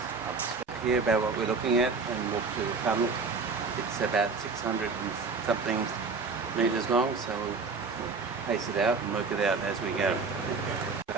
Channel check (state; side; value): quieter; left; 4.5 dB